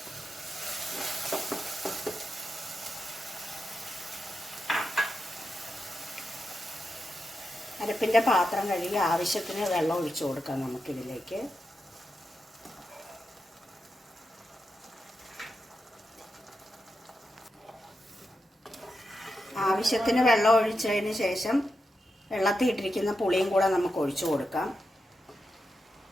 അരപ്പിൻ്റെ പാത്രം കഴുകി ആവശ്യത്തിന് വെള്ളം ഒഴിച്ചു കൊടുക്കാം നമുക്കിതിലേക്ക്. ആവശ്യത്തിന് വെള്ളം ഒഴിച്ചതിന് ശേഷം വെള്ളത്തിൽ ഇട്ടിരിക്കുന്ന പുളിയും കൂടെ നമുക്ക് ഒഴിച്ചു കൊടുക്കാം.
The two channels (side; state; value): both; normal; correlation 0.88